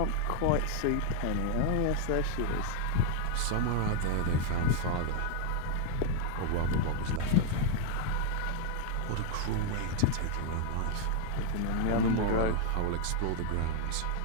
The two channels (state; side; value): different; both; correlation 0.00